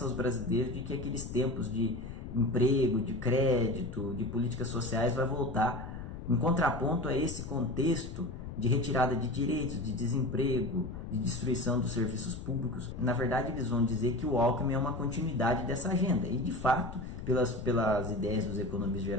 aos brasileiros de que aqueles tempos de emprego, de crédito, de políticas sociais vai voltar, em contraponto a esse contexto de retirada de direitos, de desemprego, de destruição dos serviços públicos. Na verdade, eles vão dizer que o Alckmin é uma continuidade dessa agenda, e de fato, pelas ideias dos economistas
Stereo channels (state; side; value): noise; left; rumble, 9 dB below the sound